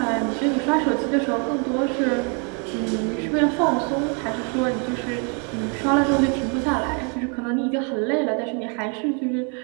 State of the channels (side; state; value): left; quieter; 37.5 dB